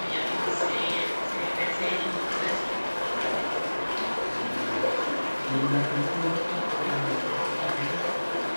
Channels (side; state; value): both; inverted; correlation -1.00